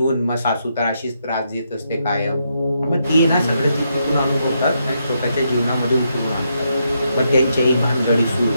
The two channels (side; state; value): both; inverted; correlation -0.80